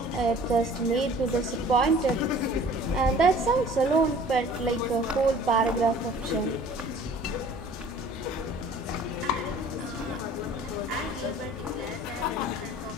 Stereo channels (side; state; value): both; normal; correlation 0.49